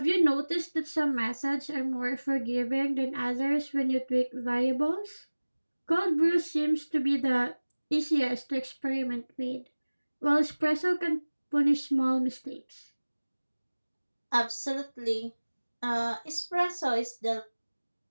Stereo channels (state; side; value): inverted; both; correlation -1.00